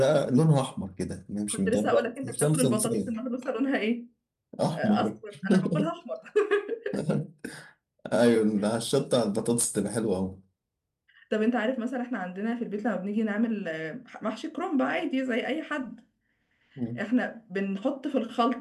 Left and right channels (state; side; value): identical; both; correlation 1.00